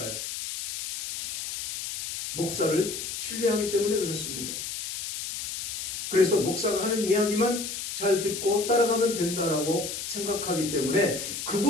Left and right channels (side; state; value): left; noise; hiss, 6 dB below the sound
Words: 목사를 신뢰하기 때문에 그렇습니다. 그래서 목사가 하는 이야기만 잘 듣고 따라가면 된다라고 생각하기 때문에